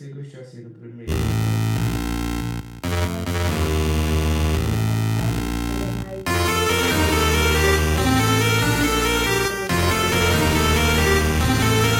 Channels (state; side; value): identical; both; correlation 1.00